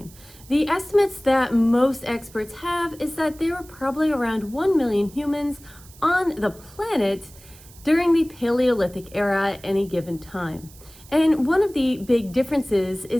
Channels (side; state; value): right; noise; hiss, 22 dB below the sound